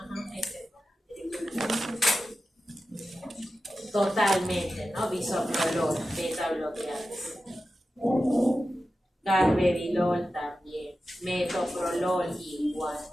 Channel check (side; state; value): both; normal; correlation 0.92